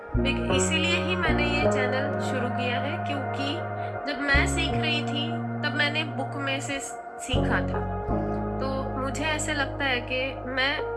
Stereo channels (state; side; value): identical; both; correlation 1.00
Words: इसीलिए ही मैंने ये चैनल शुरू किया है, क्योंकि जब मैं सीख रही थी तब मैंने बुक में से सीखा था, तो मुझे ऐसे लगता है कि मैं